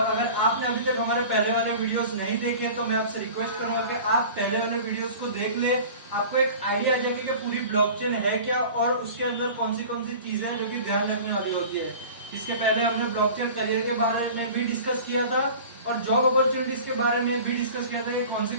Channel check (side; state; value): both; inverted; correlation -0.40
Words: अगर आपने अभी तक हमारे पहले वाले वीडियोस नहीं देखे तो मैं आपसे रिक्वेस्ट करूंगा कि आप पहले वाले वीडियोस को देख ले। आपको एक आइडिया आ जाएगी कि पूरी ब्लॉकचेन है क्या और उसके अंदर कौन सी चीजें हैं जो कि ध्यान रखने वाली होती है। इसके पहले हमने ब्लॉकचेन करियर के बारे में भी डिस्कस किया था और जॉब अपॉर्चुनिटीज के बारे में भी डिस्कस किया था कि